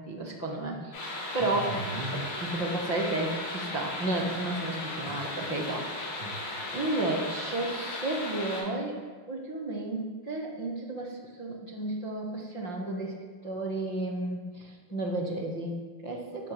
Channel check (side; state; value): right; late; 5.7 ms